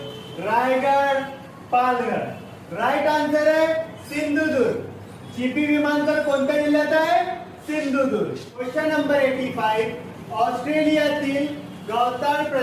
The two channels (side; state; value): both; identical; correlation 1.00